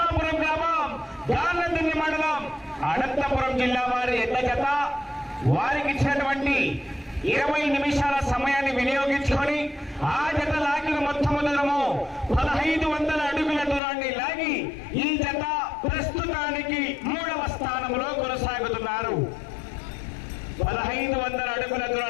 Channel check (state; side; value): drops out; right; at 13.8 s